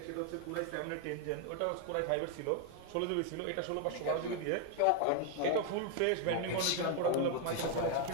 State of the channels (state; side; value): different; both; correlation 0.00